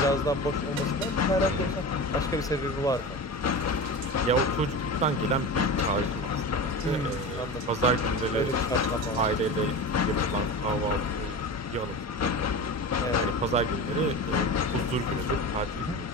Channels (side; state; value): both; normal; correlation 0.28